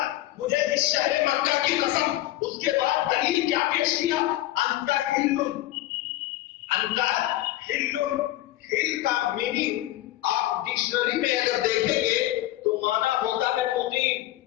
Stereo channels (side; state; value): right; quieter; 15.7 dB